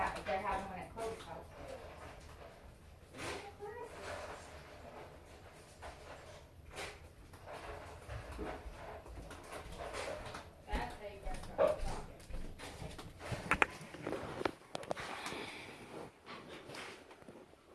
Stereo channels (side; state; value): both; identical; correlation 1.00